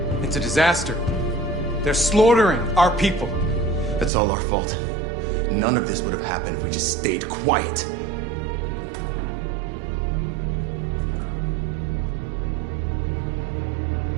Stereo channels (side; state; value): left; drops out; at 4.1 s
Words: It's a disaster. They're slaughtering our people. That's all our fault. None of this would have happened if we just stayed quiet.